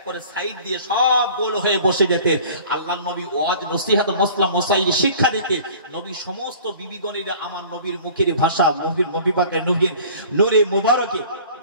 করে সাইড দিয়ে সব গোল হয়ে বসে যেতেন। আল্লাহ নবী ওয়াজ নসিহত মসলা মসাইল শিক্ষা দিতেন। নবী সমস্ত বিবিগণের আমার নবীর মুখের ভাষা, নবী পাকের নূরে মোবারকে,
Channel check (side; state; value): both; inverted; correlation -0.46